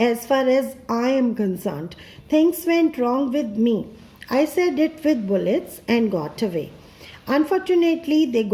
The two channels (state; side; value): identical; both; correlation 1.00